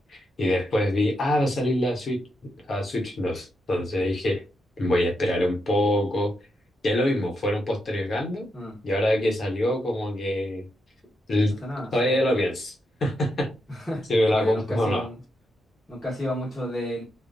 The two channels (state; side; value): normal; both; correlation 0.83